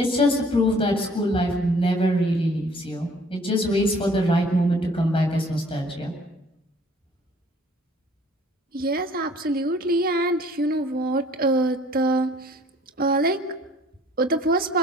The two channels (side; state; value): both; normal; correlation 0.55